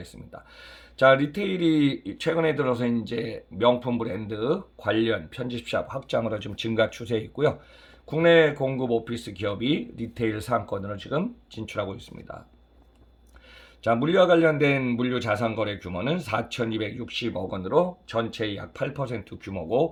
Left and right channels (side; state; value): both; identical; correlation 1.00